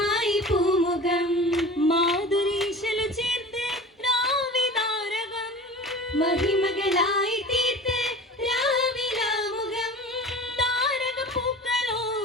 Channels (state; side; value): normal; both; correlation 0.38